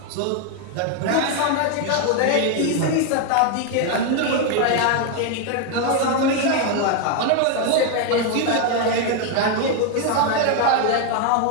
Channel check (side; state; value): both; different; correlation 0.01